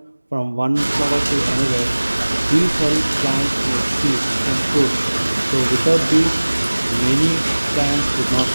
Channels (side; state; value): both; inverted; correlation -1.00